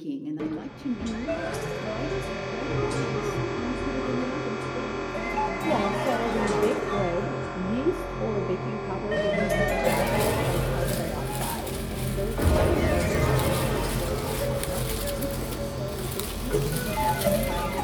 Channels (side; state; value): both; identical; correlation 1.00